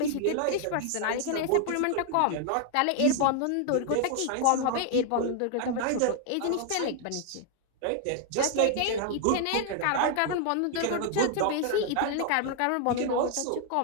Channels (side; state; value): both; different; correlation 0.00